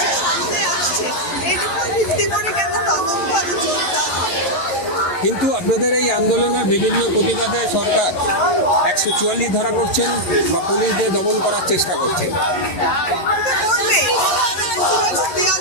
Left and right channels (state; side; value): late; right; 11 ms